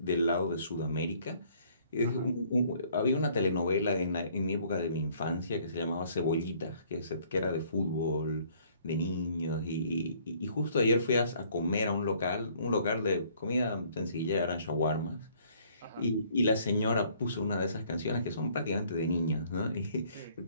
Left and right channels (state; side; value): inverted; both; correlation -0.60